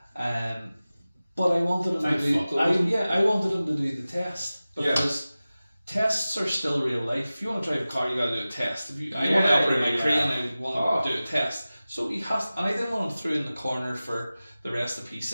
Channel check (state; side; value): inverted; both; correlation -0.96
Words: But I wanted him I wanted him to do the test, because tests are still real life. If you want to drive a car, you got to do a test. I want to operate my crane, I want to do a test. So he has, and I didn't want him through in the corner for the rest of